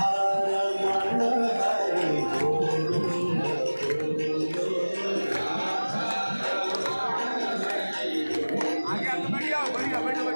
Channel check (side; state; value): both; inverted; correlation -1.00